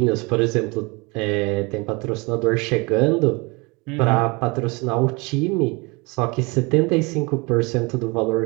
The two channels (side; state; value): left; quieter; 27.4 dB